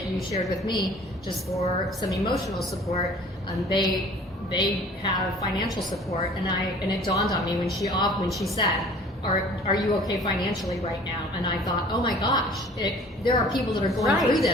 you shared with me, just for some emotional support, they have financial support, and it dawned on me when she said, Are you okay financially right now? And I thought, oh my gosh, there are people that are going through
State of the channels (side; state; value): both; normal; correlation 0.49